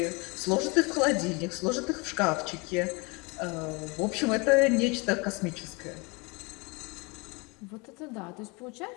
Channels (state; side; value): quieter; right; 28.7 dB